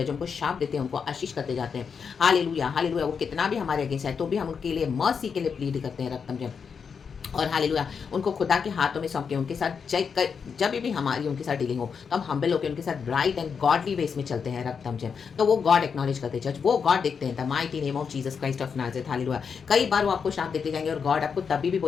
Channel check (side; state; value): right; quieter; 6.2 dB